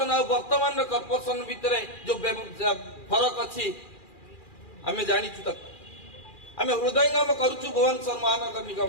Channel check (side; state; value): right; late; 2.4 ms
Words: और वर्तमान कॉर्पोरेशन भितर जो फरक अच्छी आमे जानिचु तक आमे हृदयंगम करूचु भुवनेश्वर महानगर